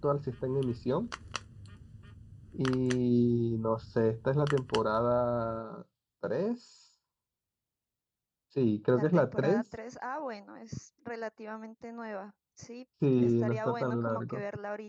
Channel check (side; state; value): both; identical; correlation 1.00